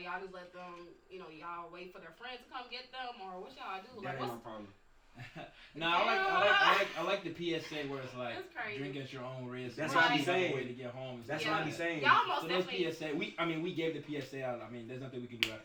y'all just let them, y'all wait for their friends to come get them, or what y'all do? That ain't my problem. No, I like the PSA where it's like drink at your own risk. That's what I be saying. Way to get home. That's what I be saying. Y'all most so definitely. PSA, we gave the PSA out. I mean, there's nothing we can do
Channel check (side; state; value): both; identical; correlation 1.00